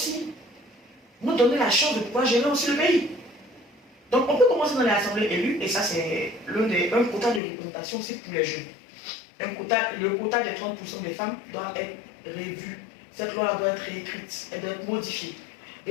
nous donner la chance de pouvoir gérer aussi le pays. Donc, on peut commencer dans l'assemblée élue, et ça, c'est un quota de représentation aussi pour les jeunes. Le quota des 30% des femmes doit être revu. Cette loi doit être réécrite, elle doit être modifiée.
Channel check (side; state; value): right; drops out; at 7.4 s